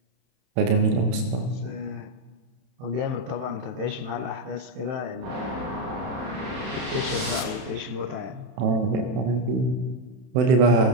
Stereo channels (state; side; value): late; left; 31 ms